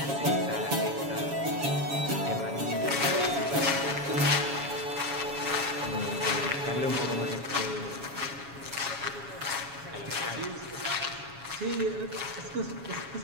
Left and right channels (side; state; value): left; late; 7.2 ms